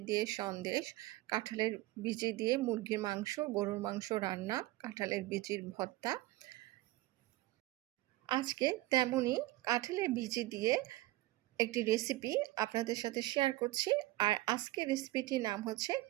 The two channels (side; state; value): left; quieter; 17.9 dB